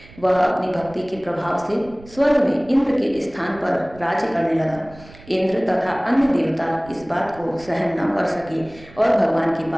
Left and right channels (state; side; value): noise; right; rumble, 21 dB below the sound